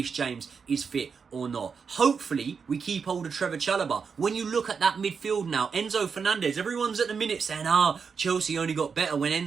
James is fit or not. Hopefully, we keep hold of Trevor Chalobah. When you look at that midfield now, Enzo Fernandez, everyone's at the minute saying, Chelsea only got better when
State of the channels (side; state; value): left; quieter; 5.8 dB